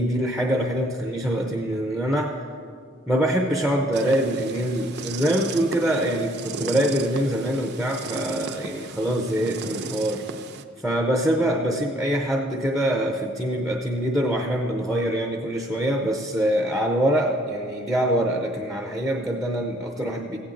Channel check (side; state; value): both; normal; correlation 0.63